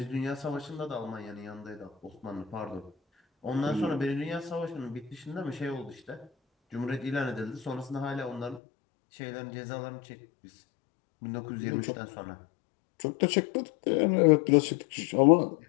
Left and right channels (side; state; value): right; drops out; at 8.6 s